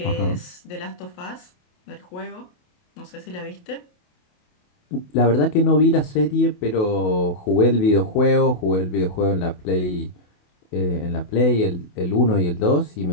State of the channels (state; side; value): late; right; 28 ms